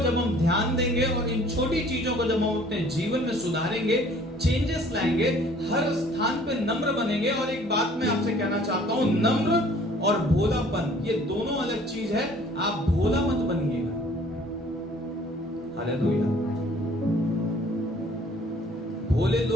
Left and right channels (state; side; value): normal; both; correlation 0.54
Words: हम ध्यान देंगे और इन छोटी चीजों को जब हम अपने जीवन में सुधारेंगे, चेंजेस लाएंगे, हर स्थान पे नम्र बनेंगे। और एक बात मैं आपसे कहना चाहता हूं, नम्र और भोलापन ये दोनों अलग चीज है। आप भोला मत बनिएगा। हालेलुया। भोले